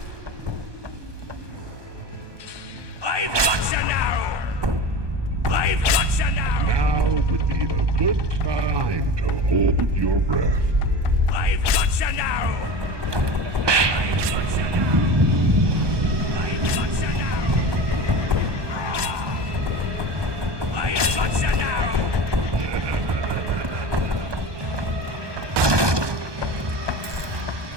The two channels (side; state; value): left; late; 1.2 ms